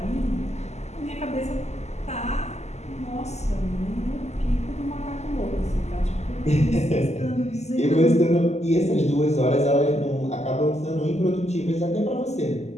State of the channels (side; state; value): right; late; 0.33 ms